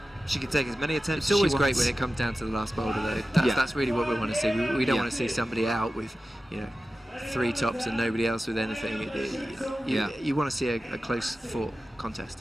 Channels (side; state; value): both; normal; correlation 0.94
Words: She can take as many attempts. It's always great when it comes down to the last boulder, though. That's really what we want to see. We don't want to see somebody out with 3 tops and nobody else with anything. You want to see a close fought